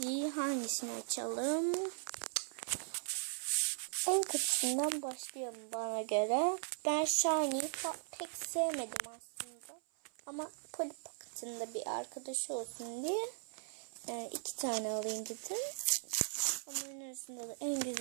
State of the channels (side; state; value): left; silent; 52 dB below the other